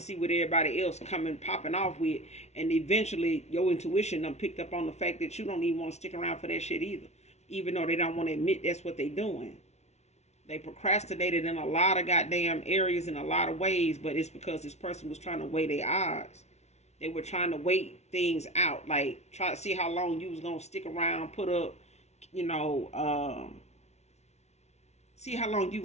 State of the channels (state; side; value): late; right; 0.32 ms